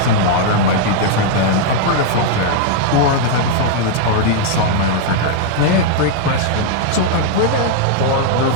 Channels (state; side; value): different; both; correlation 0.00